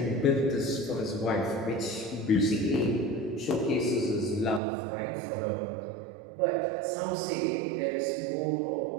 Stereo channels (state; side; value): drops out; left; at 4.6 s